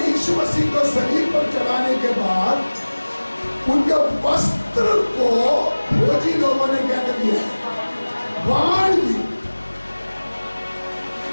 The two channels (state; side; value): inverted; both; correlation -1.00